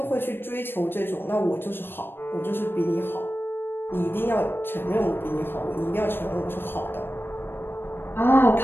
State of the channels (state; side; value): late; right; 0.10 ms